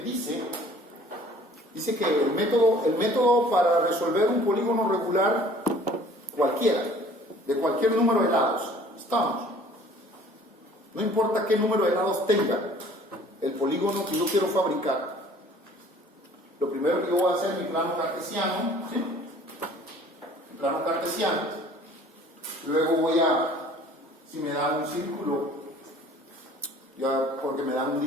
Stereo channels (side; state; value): both; normal; correlation 0.52